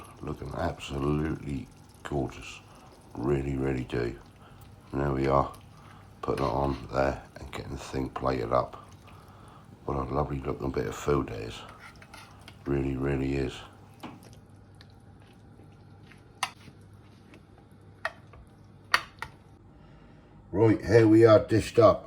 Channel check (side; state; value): both; identical; correlation 1.00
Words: looking absolutely gorgeous. Really, really do. And there we are, putting it on there and getting the thing plated up. What a lovely looking bit of food it is. Really, really is. Right, here we are dished